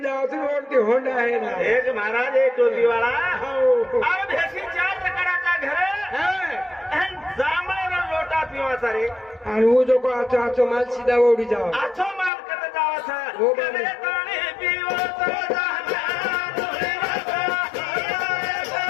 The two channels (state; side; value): drops out; right; at 12.3 s